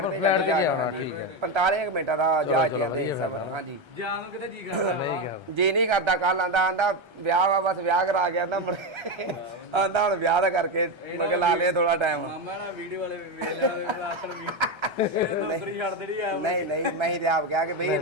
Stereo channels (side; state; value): left; late; 1.3 ms